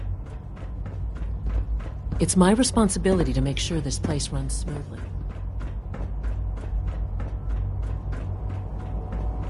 It's my responsibility to make sure this place runs smoothly.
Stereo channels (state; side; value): identical; both; correlation 1.00